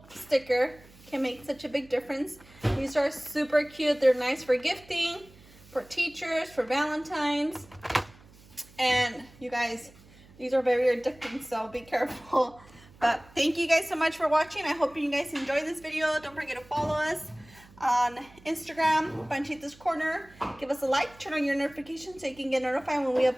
sticker can make such a big difference. These are super cute. They're nice for gifting, for teachers, for Valentines. And you guys, these are very addicting, so be careful. But thank you guys so much for watching. I hope you guys enjoyed this video. Don't forget to follow us on Instagram, Panchita's Corner. Give us a like, turn on your notifications so you can get notified when we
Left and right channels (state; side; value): noise; right; hum, 24 dB below the sound